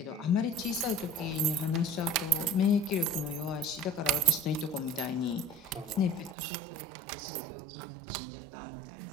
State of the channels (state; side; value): drops out; left; at 6.4 s